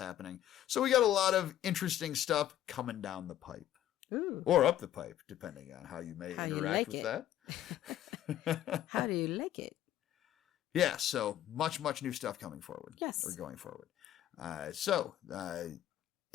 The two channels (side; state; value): right; quieter; 12.1 dB